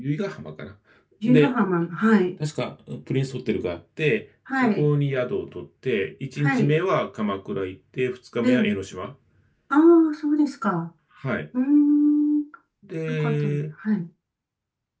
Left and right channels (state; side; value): identical; both; correlation 1.00